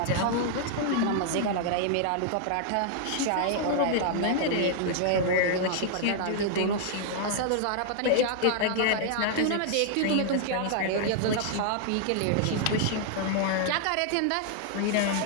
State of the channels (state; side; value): different; both; correlation -0.01